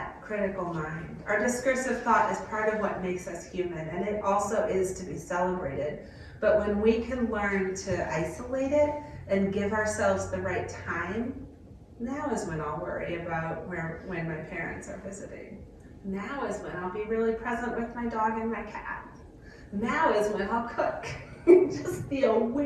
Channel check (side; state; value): both; identical; correlation 1.00